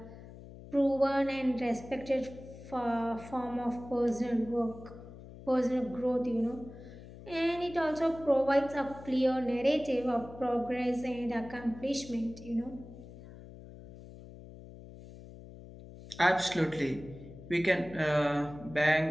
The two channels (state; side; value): noise; left; hum, 16 dB below the sound